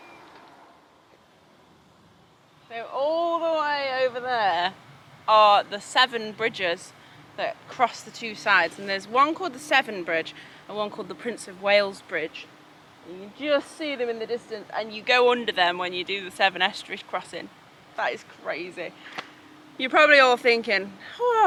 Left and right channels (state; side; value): identical; both; correlation 1.00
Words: So all the way over there are the Severn bridges that cross the two sides, and there's one called the Severn Bridge and one called the Prince of Wales Bridge. And you just see them in the distance, and you go under them when you do the Severn Estuary crossing. That is crazy. You're probably all thinking,